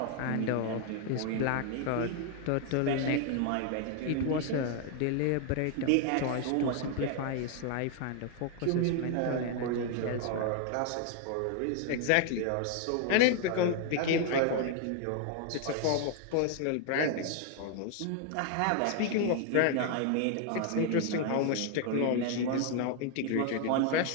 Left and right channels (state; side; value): different; both; correlation 0.00